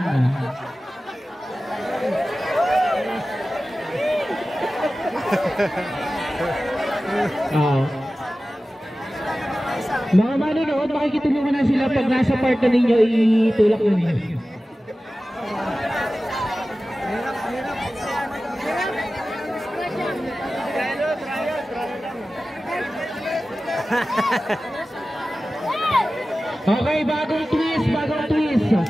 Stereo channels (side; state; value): both; normal; correlation 0.95